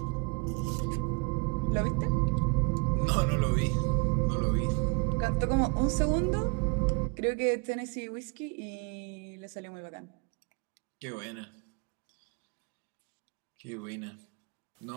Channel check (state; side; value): quieter; left; 31.6 dB